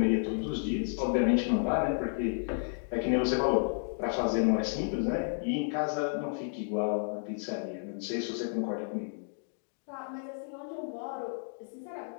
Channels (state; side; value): silent; right; digital silence